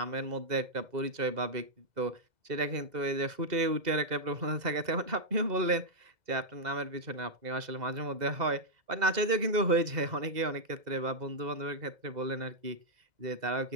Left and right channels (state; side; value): late; left; 2.0 ms